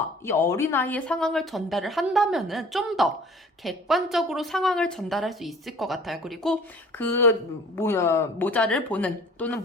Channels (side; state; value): both; normal; correlation 0.48